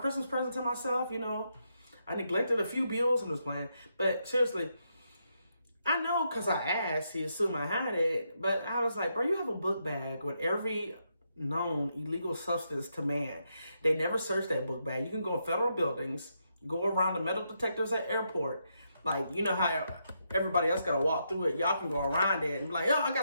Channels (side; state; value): both; inverted; correlation -0.81